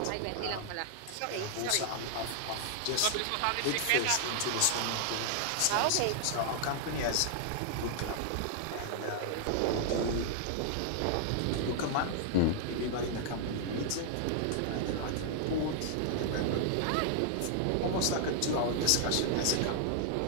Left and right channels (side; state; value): both; different; correlation 0.00